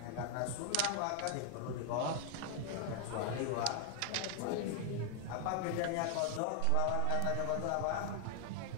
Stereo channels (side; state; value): both; different; correlation 0.00